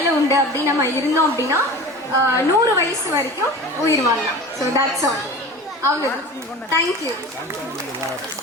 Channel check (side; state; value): both; normal; correlation 0.35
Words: உண்டு அப்படின்னு நம்ம இருந்தோம் அப்படின்னா 100 வயசு வரைக்கும் உயிர் வாழலாம். So that's all. அவ்வளோதான். தேங்க்யூ.